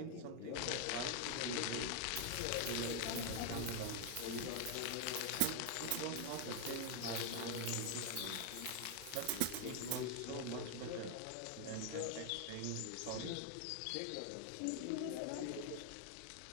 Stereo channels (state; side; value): different; both; correlation 0.00